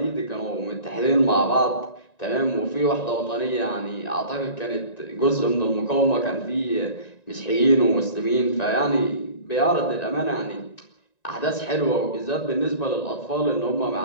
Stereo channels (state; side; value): late; right; 1.9 ms